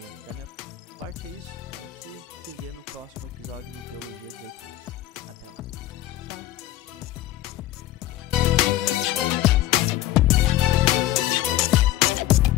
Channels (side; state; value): right; quieter; 14.6 dB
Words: da minha parte é isso. A gente se vê no próximo episódio do Teologia 18+. Até lá.